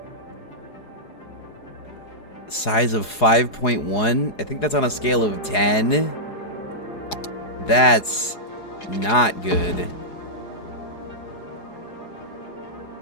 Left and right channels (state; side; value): late; right; 4.8 ms